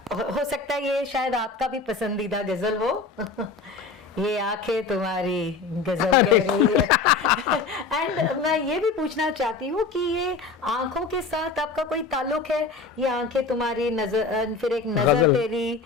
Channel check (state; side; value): quieter; right; 4.4 dB